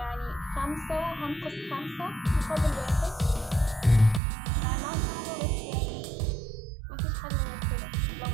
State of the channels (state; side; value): drops out; left; at 4.2 s